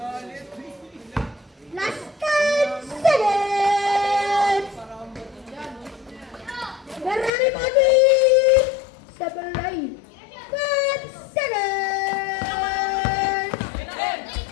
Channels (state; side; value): drops out; right; at 7.3 s